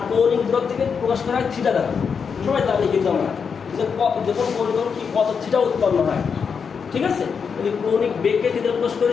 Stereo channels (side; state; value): right; quieter; 6.2 dB